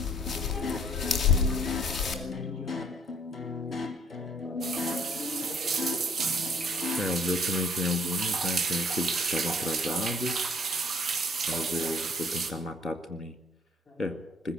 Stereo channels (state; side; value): normal; both; correlation 0.61